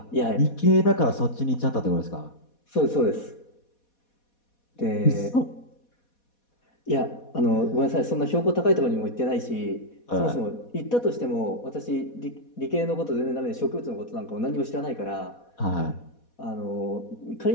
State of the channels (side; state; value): right; late; 4.2 ms